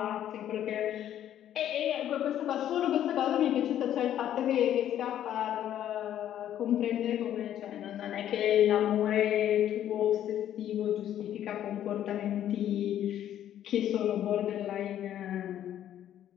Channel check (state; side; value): quieter; right; 11.1 dB